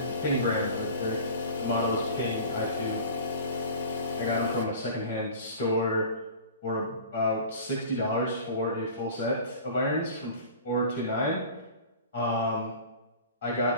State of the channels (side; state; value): both; inverted; correlation -0.40